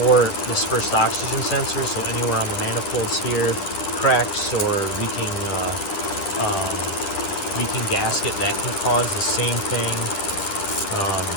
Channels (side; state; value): right; late; 10 ms